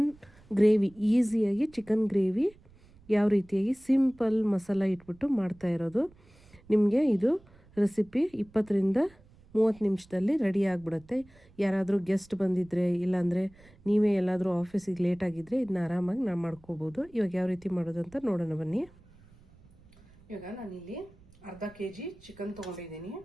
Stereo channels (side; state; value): right; noise; rumble, 26 dB below the sound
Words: gravy, ಈಸಿಯಾಗಿ ಚಿಕನ್ ಗ್ರೇವಿ ಯಾವ ರೀತಿಯಾಗಿ ಸಿಂಪಲ್ ಮಸಾಲ ಇಟ್ಬಿಟ್ಟು ಮಾಡ್ತಾ ಇರೋದು. ನಿಮಗೆ ಇದು ರೆಸಿಪಿ 20ರಿಂದ 30 ನಿಮಿಷದಲ್ಲಿ ರೆಡಿ ಆಗಿಬಿಡುತ್ತೆ. ಯಾರಾದರೂ ಗೆಸ್ಟ್ ಬಂದಿದ್ದರೆ, ಇಲ್ಲಾಂದರೆ ನೀವೇ ಎಲ್ಲಾದರೂ ಆಫೀಸಿಗೆ ಲೇಟ್ ಆಗಿದ್ದರೆ ಇದನ್ನ ಆರಾಮಾಗಿ ನಾವು ಮಾಡ್ಕೋಬೋದು. ಇವಾಗ ಯಾವ ರೀತಿ ಮಾಡೋದು ಅಂತ ನೋಡೋಣ ಬನ್ನಿ. ಇವಾಗ ನಾನಿಲ್ಲಿ ಅರ್ಧ kg ಚಿಕನ್ ತೊಗೊಂಡಿದ್ದೀನಿ.